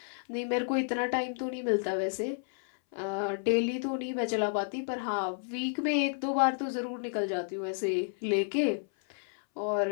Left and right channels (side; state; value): right; silent; 57 dB below the other